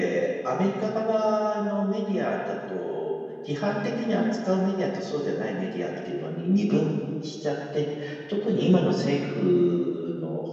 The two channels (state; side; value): identical; both; correlation 1.00